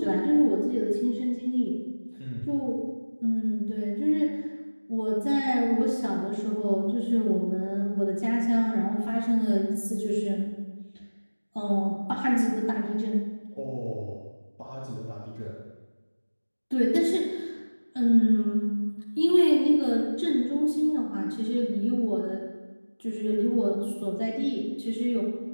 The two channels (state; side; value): inverted; both; correlation -1.00